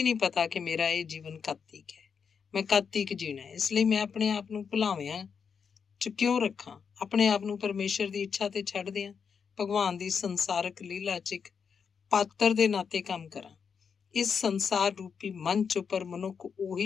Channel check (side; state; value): right; quieter; 6.4 dB